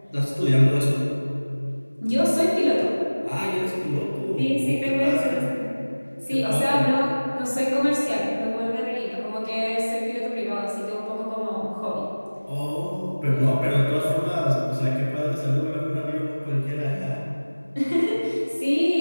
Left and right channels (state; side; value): inverted; both; correlation -1.00